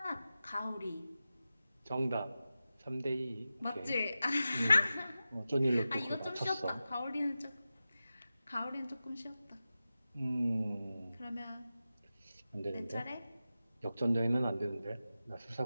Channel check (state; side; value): inverted; both; correlation -0.93